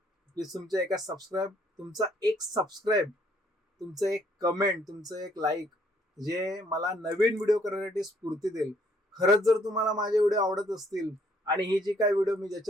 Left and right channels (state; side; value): normal; both; correlation 0.65